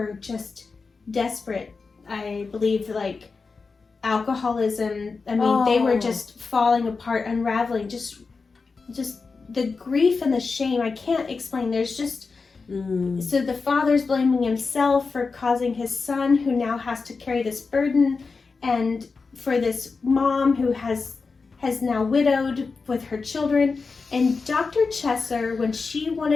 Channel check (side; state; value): right; quieter; 4.5 dB